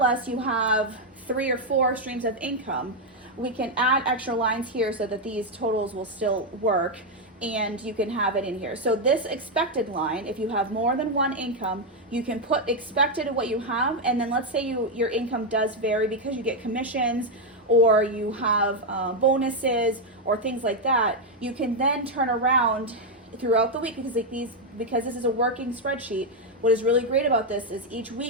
us you have 3 or 4 streams of income, we can add extra lines here so that these totals will still work, and you can have it in here. So this expected line, if you have more than one income, you can put expected of what you have, and then let's say your income does vary because you get commissions or you have bonuses or things like that. You can then turn around throughout the week, because this is a working spreadsheet. What is really great about this is each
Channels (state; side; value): normal; both; correlation 0.02